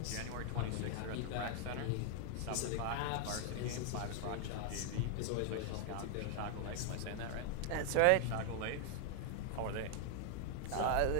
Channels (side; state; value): both; different; correlation 0.00